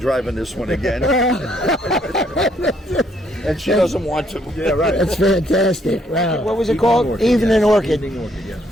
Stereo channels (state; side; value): normal; both; correlation 0.69